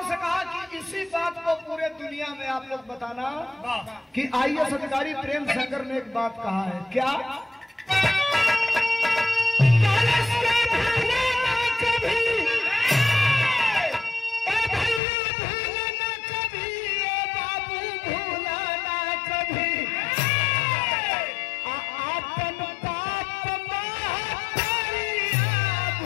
से कहा कि इसी बात को पूरे दुनिया में आप लोग बताना कि आईएएस अधिकारी प्रेम शंकर ने एक बात कहा है। क्या?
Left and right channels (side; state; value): right; drops out; at 15.0 s